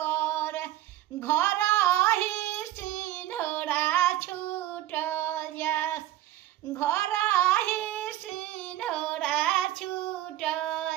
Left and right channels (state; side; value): quieter; left; 14.2 dB